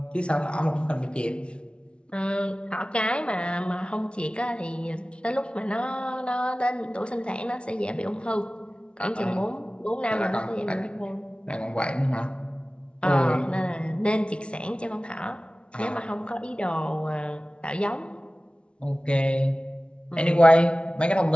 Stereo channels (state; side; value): late; right; 0.058 ms